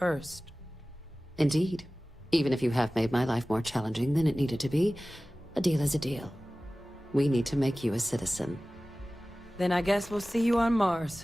Indeed. Even if you have made my life more challenging than it needed to be, a deal is a deal. We need to make you a citizen. Then I guess we'll see you on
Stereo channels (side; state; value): both; normal; correlation 0.97